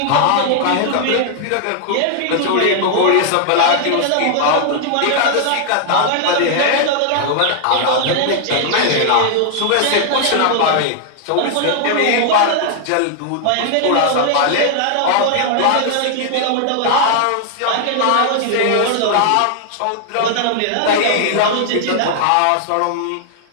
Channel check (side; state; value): both; different; correlation 0.00